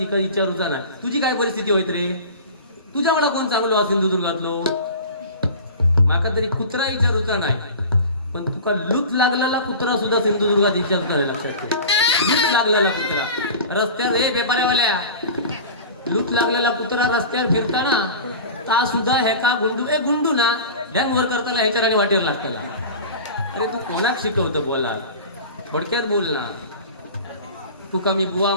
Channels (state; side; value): inverted; both; correlation -0.35